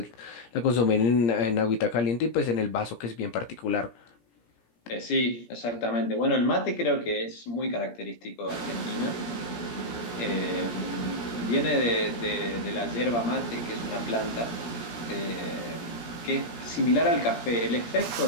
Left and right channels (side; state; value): right; late; 17 ms